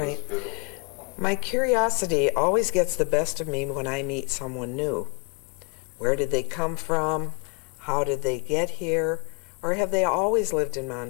My curiosity always gets the best of me when I meet someone new. Where did they come from? How did they get here? Or have they always lived in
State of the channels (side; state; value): right; quieter; 34.6 dB